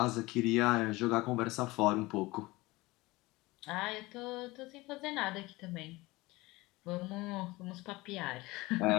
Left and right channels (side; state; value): right; quieter; 21.2 dB